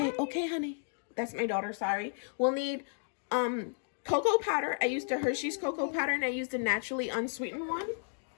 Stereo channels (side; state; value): right; silent; digital silence